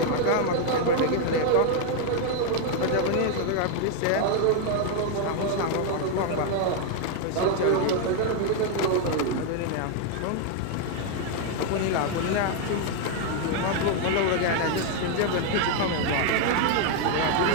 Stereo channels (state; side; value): different; both; correlation 0.01